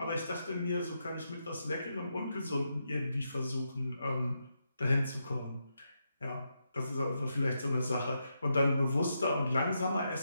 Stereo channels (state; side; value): inverted; both; correlation -0.84